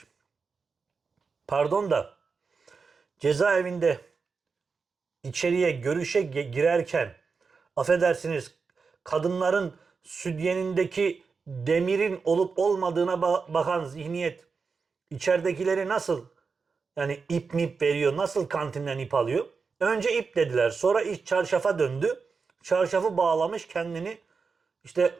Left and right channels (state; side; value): quieter; left; 5.0 dB